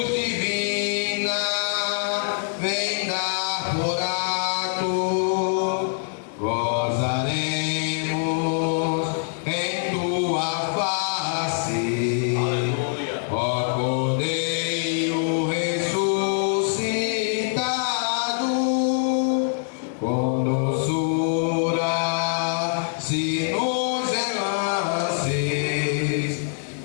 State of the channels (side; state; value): right; silent; 62 dB below the other